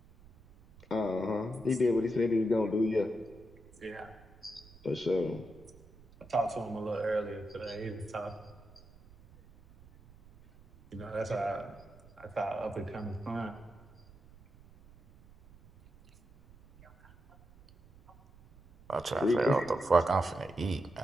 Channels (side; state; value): right; noise; rumble, 23 dB below the sound